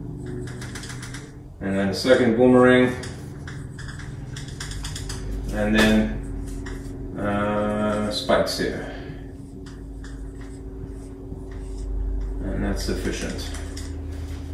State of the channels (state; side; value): identical; both; correlation 1.00